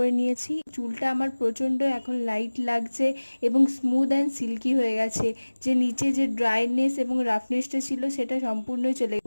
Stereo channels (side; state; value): both; inverted; correlation -1.00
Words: নিয়েছি। চুলটা আমার প্রচণ্ড এখন লাইট লাগছে এবং স্মুথ অ্যান্ড সিল্কি হয়ে গেছে। যে নিচে যে ড্রাইনেস এবং রাফনেসটা ছিল সেটা সম্পূর্ণই চলে